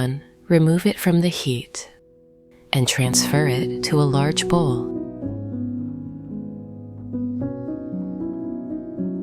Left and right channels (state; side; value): identical; both; correlation 1.00